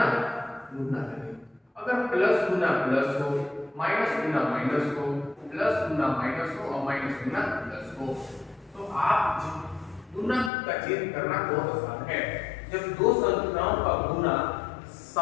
गुना का नियम, अगर प्लस गुना प्लस हो, माइनस गुना माइनस हो, प्लस गुना माइनस हो और माइनस गुना प्लस हो, तो आप गुना का चिन्ह करना बहुत आसान है। जब 2 संख्याओं का गुना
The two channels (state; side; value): drops out; right; at 10.5 s